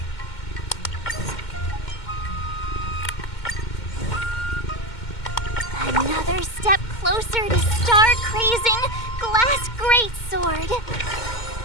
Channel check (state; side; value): late; right; 2.1 ms